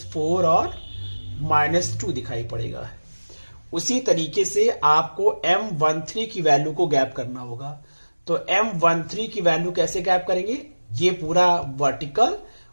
और -2 दिखाई पड़ेगा। उसी तरीके से आपको M13 की वैल्यू को गैप करना होगा। तो M13 की वैल्यू कैसे गैप करेंगे, ये पूरा वर्टिकल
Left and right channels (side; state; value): both; inverted; correlation -1.00